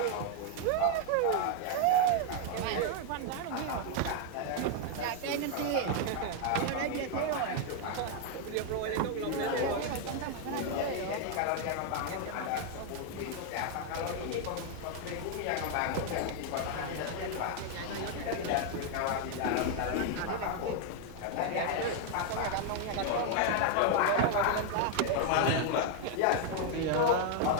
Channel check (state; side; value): different; both; correlation 0.00